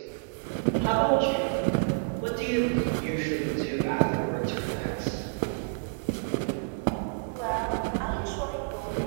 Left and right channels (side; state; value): left; silent; digital silence